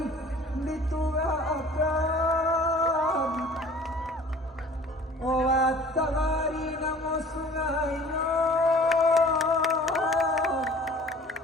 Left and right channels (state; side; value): normal; both; correlation 0.48